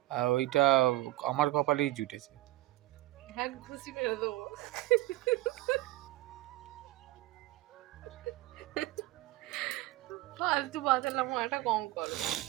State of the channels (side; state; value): left; quieter; 17.7 dB